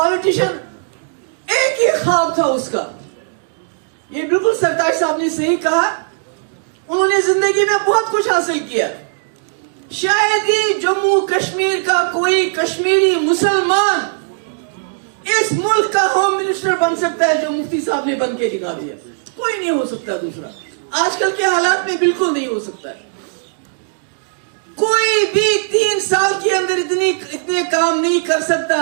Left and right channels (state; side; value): silent; left; digital silence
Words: एक ही ख्वाब था उसका, ये बिल्कुल सरताज साहब ने सही कहा, उन्होंने जिंदगी में बहुत कुछ हासिल किया। शायद ही जम्मू कश्मीर का कोई कश्मीरी मुसलमान इस मुल्क का होम मिनिस्टर बन सकता है जो मुफ्ती साहब ने बन के दिखा दिया। कोई नहीं हो सकता दूसरा, आजकल के हालात में बिल्कुल नहीं हो सकता है। कोई भी 3 साल के अंदर इतने काम नहीं कर सकता